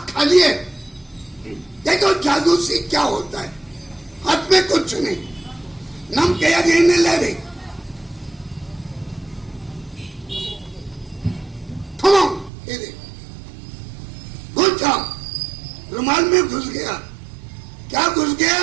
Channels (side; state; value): left; drops out; at 12.5 s